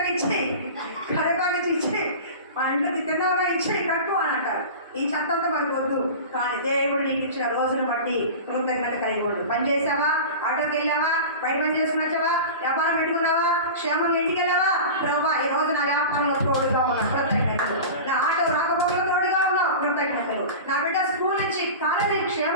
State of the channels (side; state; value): both; inverted; correlation -0.32